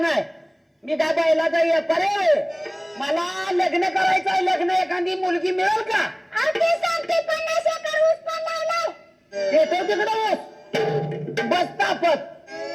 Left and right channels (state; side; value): identical; both; correlation 1.00